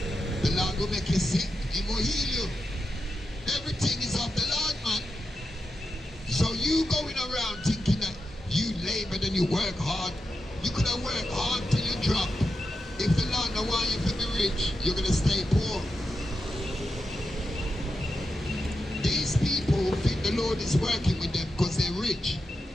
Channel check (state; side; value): normal; both; correlation 0.88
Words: The Lord will make you sick, He will heal you. Everything is of the Lord, man. So you going around thinking that you labored and you work hard. You could have worked hard till you drop. If the Lord don't want you to be rich, you're going to stay poor. These people think the Lord is working with them because they're rich.